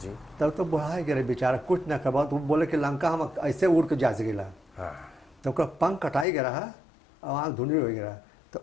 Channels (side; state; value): right; drops out; at 6.2 s